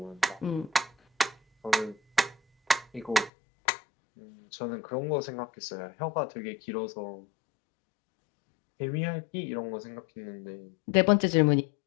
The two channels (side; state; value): right; drops out; at 3.3 s